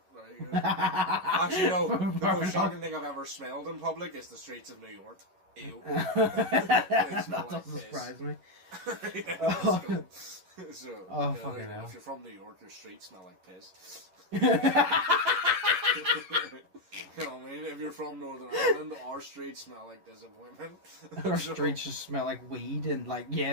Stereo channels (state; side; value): late; left; 11 ms